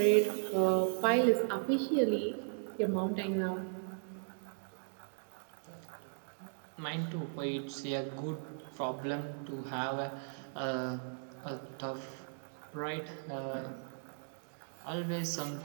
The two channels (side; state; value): left; silent; digital silence